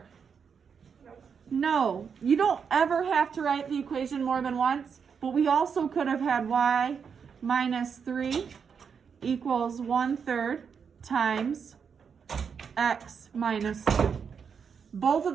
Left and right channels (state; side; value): quieter; left; 6.5 dB